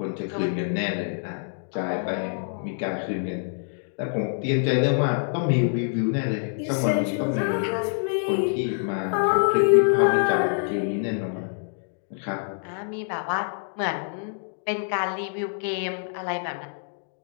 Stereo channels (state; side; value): silent; right; digital silence